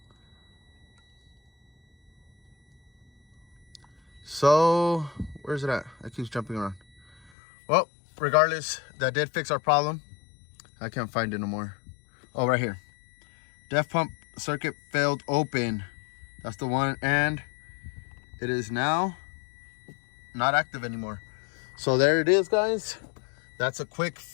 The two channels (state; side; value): drops out; right; at 7.3 s